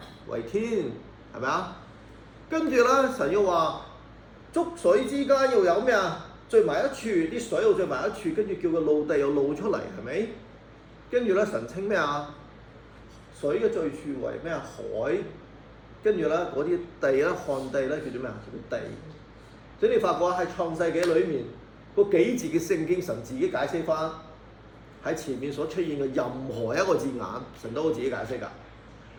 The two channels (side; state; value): both; identical; correlation 1.00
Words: 為天，係咪啊？跟住咧神要話觸水之間要有咩啊？聚埋一處，啲水又聚埋一處，跟住叫個陸地又露出嚟，係咪？跟住咧神稱咩啊？水嘅最處為咩啊？海。跟住咧嗰啲地咧，旱地咧叫做咩啊？叫做地。所以你發覺喺創世紀裏面嗰幾字嘅聖經，神自己解釋翻喺前面所出現嘅任何一個字眼，神都會自己解釋㗎。